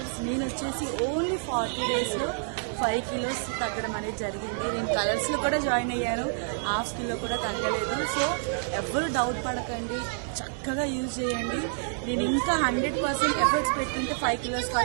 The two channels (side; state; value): left; silent; 59 dB below the other